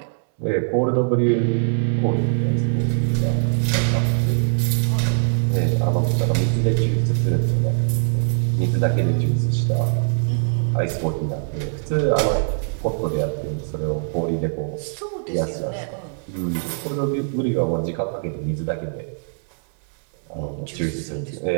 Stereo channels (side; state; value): left; silent; 64 dB below the other